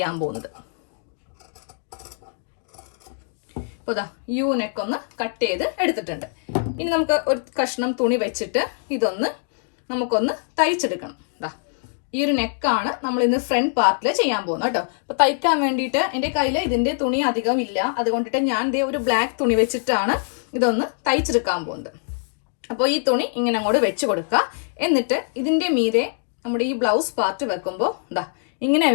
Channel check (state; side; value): silent; right; 63 dB below the other